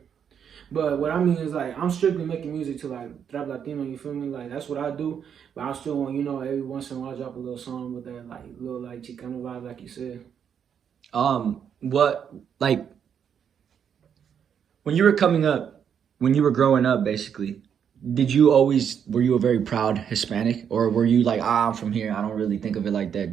But what I mean is like I'm strictly making music to like rap Latino, you feel me? Like that's what I do. But I still want, you know, every once in a while I drop a little song with that like little like Chicano vibe, like you said. What like when you were coming up, when you were growing up, basically, were you a very proud Hispanic, or were you like, I'm from here, I don't really think of it like that?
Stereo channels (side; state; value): left; quieter; 8.0 dB